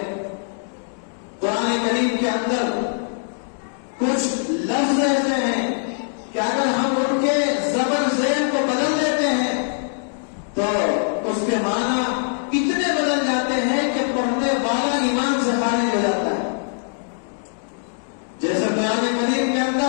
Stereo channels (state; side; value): silent; right; digital silence